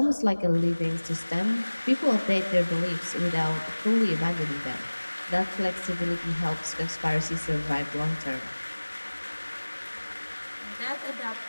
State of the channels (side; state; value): both; inverted; correlation -1.00